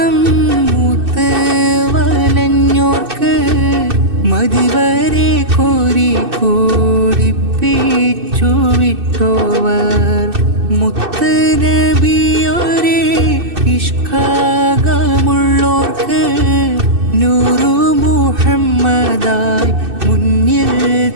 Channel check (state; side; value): late; left; 2.6 ms